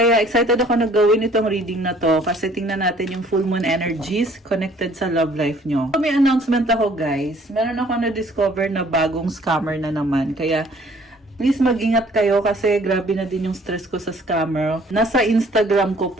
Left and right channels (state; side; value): normal; both; correlation 0.57